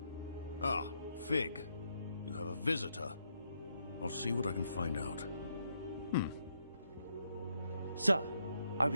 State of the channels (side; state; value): both; inverted; correlation -0.77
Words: Ah, Fig. You have a visitor. I'll see what I can find out. Sir, I